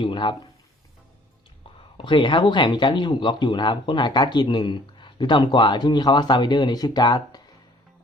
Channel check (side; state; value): both; normal; correlation 0.57